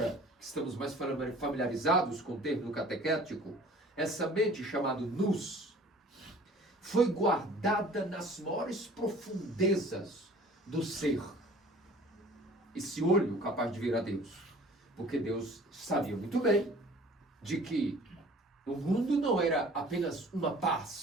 que estamos mais familiarizados com o termo catequético, essa mente chamada nous, foi guardada nas maiores profundezas do ser. Esse olho capaz de ver a Deus. Porque Deus sabia muito bem de que o mundo não era apenas uma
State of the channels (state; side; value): normal; both; correlation 0.48